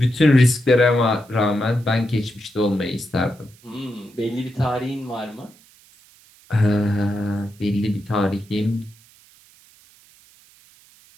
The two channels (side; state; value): right; noise; hiss, 28 dB below the sound